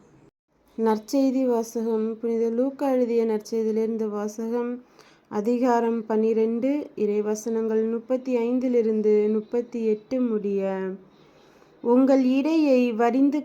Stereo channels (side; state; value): both; identical; correlation 1.00